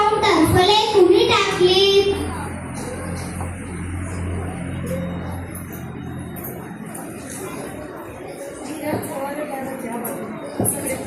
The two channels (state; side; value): identical; both; correlation 1.00